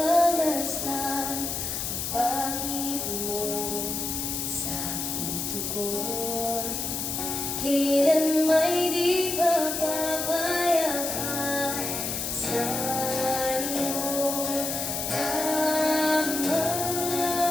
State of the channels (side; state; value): left; noise; hiss, 2 dB below the sound